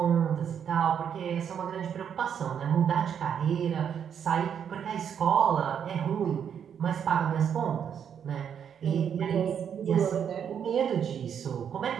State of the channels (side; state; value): left; quieter; 8.2 dB